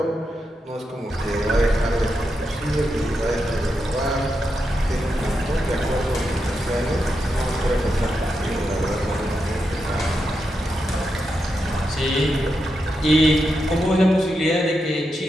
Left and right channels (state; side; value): normal; both; correlation 0.86